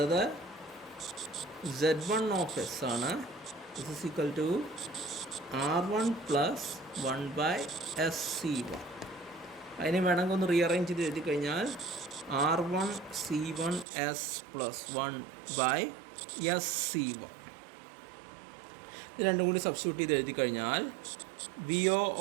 Z1 of S ആണ്. This is equal to R1 plus 1 by SC1. അതിനെ വേണമെങ്കിൽ ഒന്ന് rearrange ചെയ്ത് എഴുതി കഴിഞ്ഞാൽ R1 C1 S plus 1 by SC1. ഇത് രണ്ടും കൂടി സബ്സ്റ്റിറ്റ്യൂട്ട് ചെയ്ത് എഴുതി കഴിഞ്ഞാൽ VO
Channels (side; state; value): left; drops out; at 13.9 s